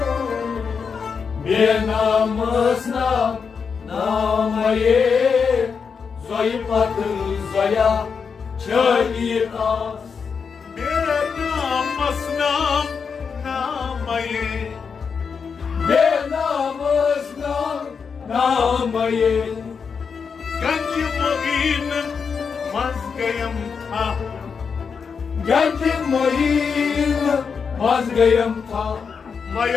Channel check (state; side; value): quieter; right; 5.9 dB